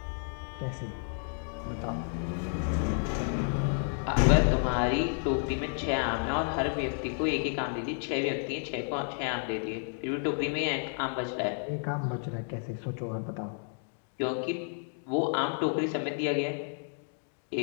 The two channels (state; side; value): silent; right; 57 dB below the other